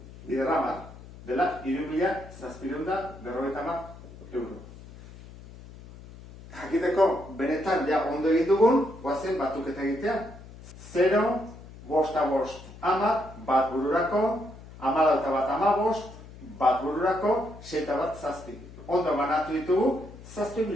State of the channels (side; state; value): left; noise; hum, 17 dB below the sound